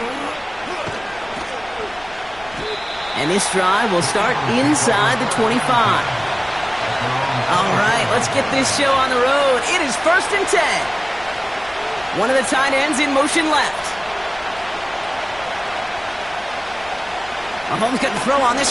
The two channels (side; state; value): left; noise; rumble, 23 dB below the sound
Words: And this drive will start inside the 25. All right, let's get this show on the road. It is 1st and 10. One of the tight ends in motion left. Mahomes couldn't throw on this